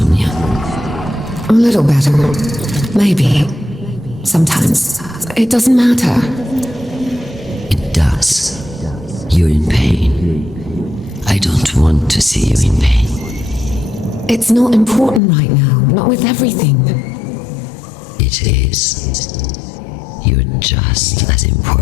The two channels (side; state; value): right; drops out; at 15.2 s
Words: A little better. Maybe. Sometimes. It doesn't matter. It does. You're in pain. I don't want to see you in pain. It's not important right now. Not with everything. It is. You're just as